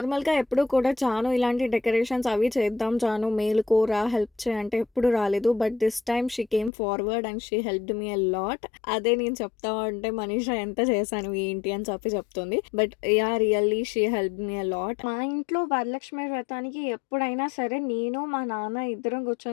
ఎప్పుడు కూడా చాను ఇలాంటి డెకరేషన్స్ అవి చేద్దాం చాను మేలుకోరా హెల్ప్ చేయి అంటే ఎప్పుడు రాలేదు. But this time she came forward and she helped me a lot. అదే నేను చెప్తా ఉంటే మనీషా ఎంత చేశాను ఏంటి అని చెప్పి చెప్తుంది. But yeah! Really she helped me a lot. మా ఇంట్లో వరలక్ష్మి వ్రతానికి ఎప్పుడైనా సరే నేను, మా నాన్న ఇద్దరం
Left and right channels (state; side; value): drops out; right; at 6.7 s